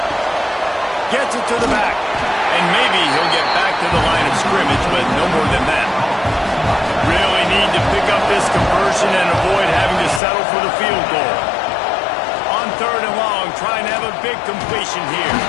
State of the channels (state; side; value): drops out; right; at 10.2 s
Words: Gets it to the back. And maybe he'll get back to the line of scrimmage, but no more than that. Really need to pick up this conversion and avoid having to settle for the field goal. On 3rd and long, trying to have a big completion here.